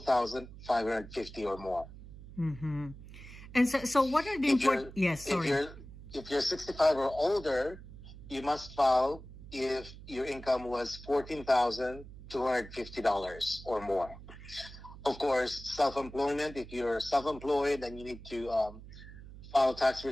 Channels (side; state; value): right; noise; hum, 15 dB below the sound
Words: or more. Mm-hmm. And so what are the important... Yes, sorry. If you're 65 or older, you must file if your income was $14,250 or more. Of course, self-employment, if you're self-employed and you need to file a tax